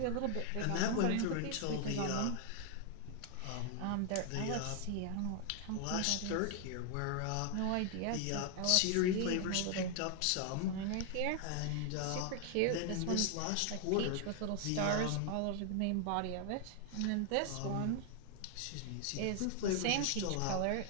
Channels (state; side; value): different; both; correlation 0.00